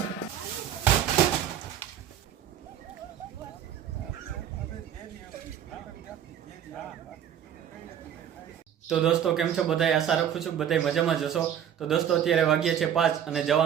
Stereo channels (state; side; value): quieter; left; 9.5 dB